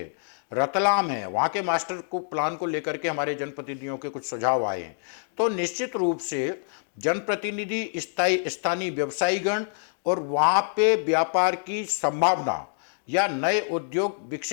रतलाम है, वहाँ के मास्टर प्लान को लेकर के हमारे जनप्रतिनिधियों के कुछ सुझाव आए हैं। तो निश्चित रूप से जनप्रतिनिधि, स्थानीय व्यवसायीगण और वहाँ पे व्यापार की संभावना या नए उद्योग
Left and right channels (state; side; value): silent; right; digital silence